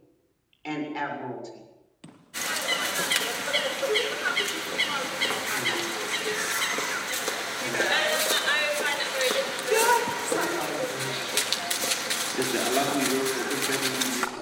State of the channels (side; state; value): both; identical; correlation 1.00